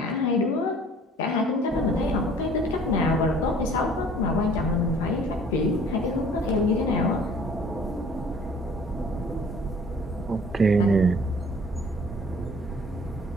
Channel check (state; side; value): normal; both; correlation 0.52